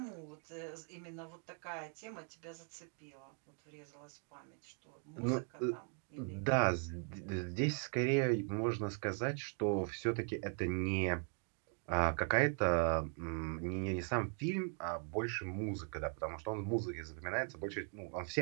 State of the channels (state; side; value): quieter; left; 39.2 dB